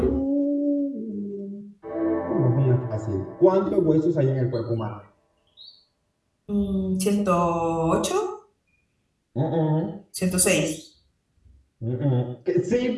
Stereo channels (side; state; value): both; identical; correlation 1.00